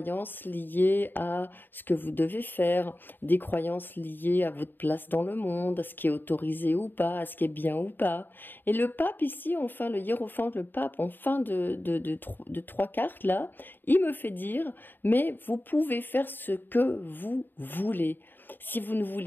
liées à ce que vous devez faire, des croyances liées à votre place dans le monde, à ce qui est autorisé ou pas, à ce qui est bien ou pas. Et le pape ici, enfin le hiérophante, le pape, en fin de 3 cartes là, il me fait dire, mais vous pouvez faire ce que vous voulez. Si vous ne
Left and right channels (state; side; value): late; right; 0.093 ms